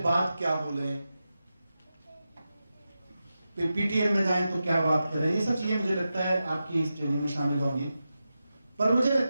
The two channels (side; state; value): both; inverted; correlation -0.91